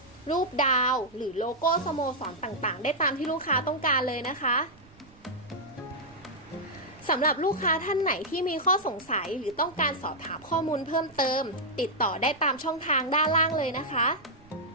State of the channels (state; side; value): noise; right; rumble, 26 dB below the sound